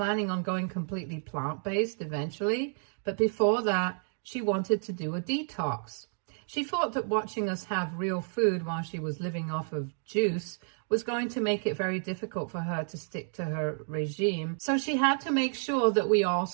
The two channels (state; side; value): silent; left; 57 dB below the other